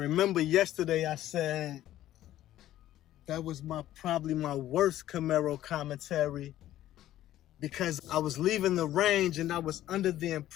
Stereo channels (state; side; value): quieter; right; 13.4 dB